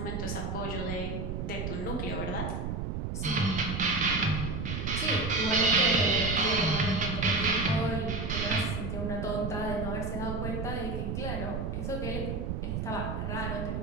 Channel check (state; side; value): noise; right; rumble, 3 dB below the sound